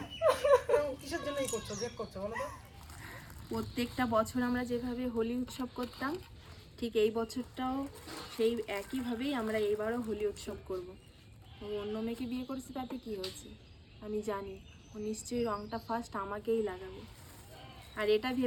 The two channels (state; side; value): identical; both; correlation 1.00